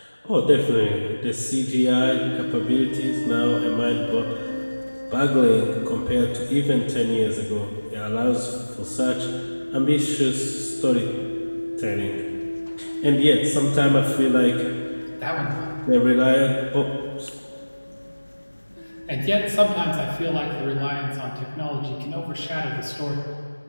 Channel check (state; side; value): inverted; both; correlation -1.00